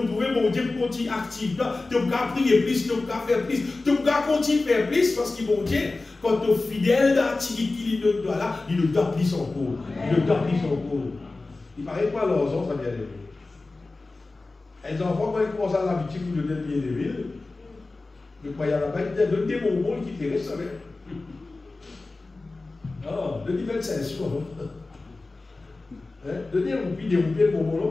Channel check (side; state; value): right; quieter; 3.4 dB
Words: mon Dieu pour continuer actif là, tu vas prier plus, tu vas faire plus, tu vas continuer à faire plus, parce que mon Dieu, quand tu es fidèle dans la petit guide qui lui donne là, il ne doit plus son corps. Il ne doit plus son corps. Il paraît quoi leurs enfants, ça vient de lui. Les enfants, quand ils commencent à l'habitude pour donner bien de ville, le croyant là-bas, ils donnent des bonbons qui te restent. Ah, le niveau de 5 jours. Donnez un roupi, des roupies de